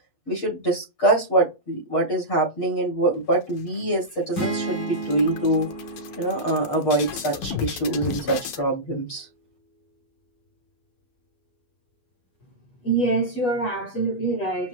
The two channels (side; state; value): right; late; 8.1 ms